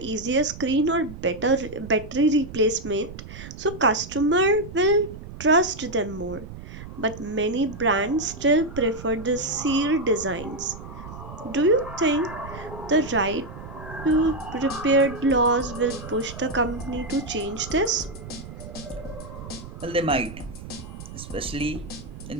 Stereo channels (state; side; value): noise; right; rumble, 13 dB below the sound